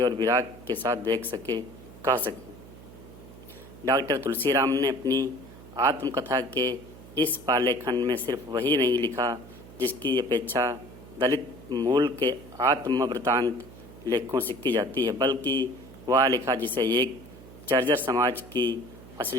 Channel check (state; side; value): noise; right; hum, 18 dB below the sound